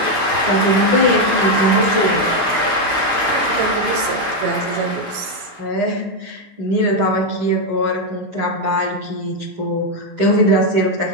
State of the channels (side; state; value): left; late; 8.7 ms